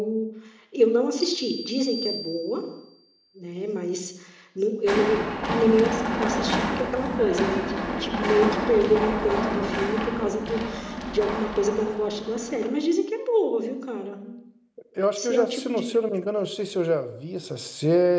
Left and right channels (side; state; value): both; identical; correlation 1.00